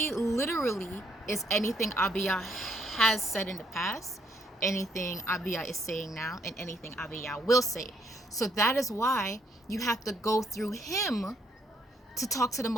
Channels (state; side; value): normal; both; correlation 0.70